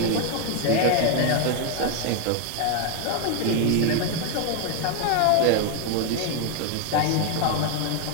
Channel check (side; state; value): both; different; correlation 0.01